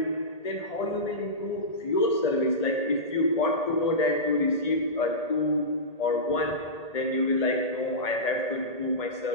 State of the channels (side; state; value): right; late; 1.8 ms